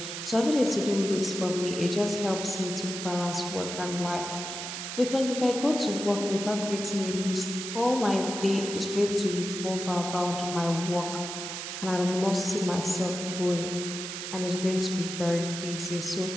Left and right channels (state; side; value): noise; right; hiss, 6 dB below the sound